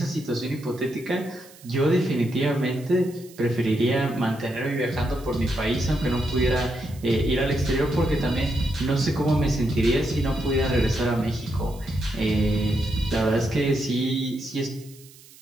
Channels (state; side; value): noise; right; hiss, 23 dB below the sound